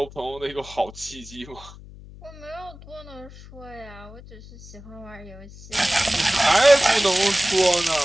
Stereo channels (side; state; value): left; noise; hum, 18 dB below the sound